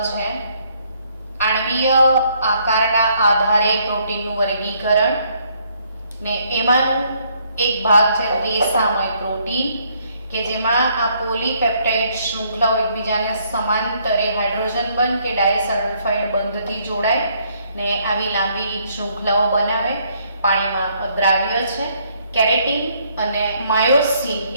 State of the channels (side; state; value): both; inverted; correlation -0.68